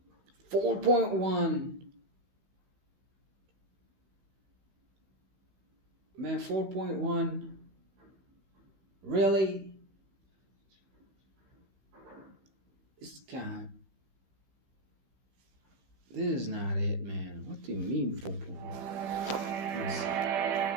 4.1. Man, 4.1. Really? This guy. This is not it, man. What do you mean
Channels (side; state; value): left; late; 15 ms